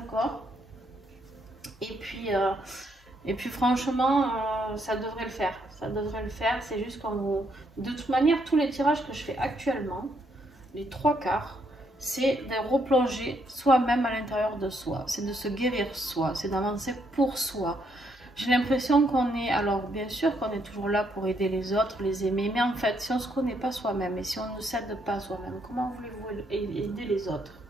Et puis franchement, ça devrait le faire. Ça devrait le faire. C'est juste qu'on vous... De toute manière, tous les tirages que je fais actuellement, les 3/4, c'est de replonger soi-même à l'intérieur de soi. C'est de se guérir soi. C'est d'avancer pour soi. J'ai l'impression qu'on est... Alors, bien sûr qu'on est toujours là pour aider les autres, les aimer. Mais en fait, si on ne se connaît pas soi-même et si on ne s'aide pas soi-même, comment voulez-vous aider les autres?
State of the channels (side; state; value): both; normal; correlation 0.74